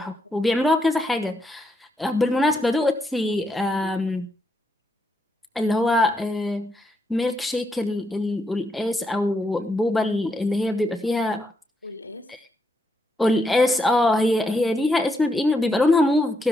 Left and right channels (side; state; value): both; normal; correlation 0.80